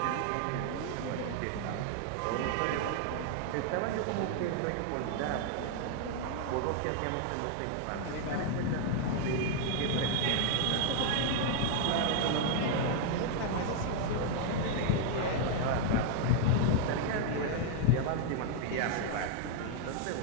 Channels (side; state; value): both; different; correlation 0.00